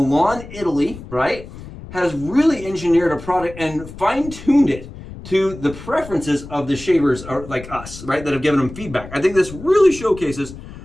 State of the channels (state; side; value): noise; left; rumble, 14 dB below the sound